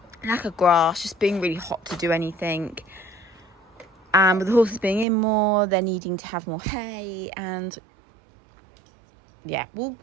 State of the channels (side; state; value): left; drops out; at 5.1 s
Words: lack of grass, just being really hot to do anything. And with the horses being in more, they're needing to have more hay. And yeah, we'll